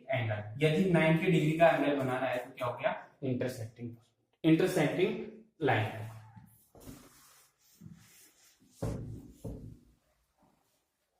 angle. यदि 90 डिग्री का एंगल बनाना है तो क्या हो गया, इंटरसेक्टिंग लाइन।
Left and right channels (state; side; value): identical; both; correlation 1.00